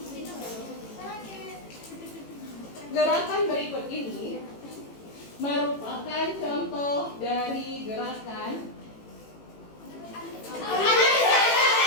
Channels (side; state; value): right; late; 18 ms